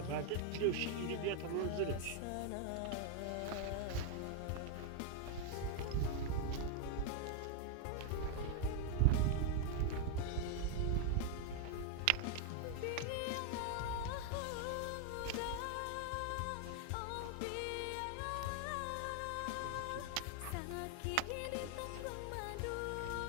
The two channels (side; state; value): both; different; correlation 0.00